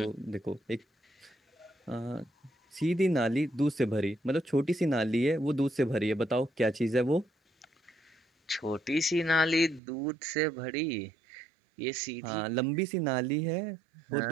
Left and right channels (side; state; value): left; drops out; at 9.8 s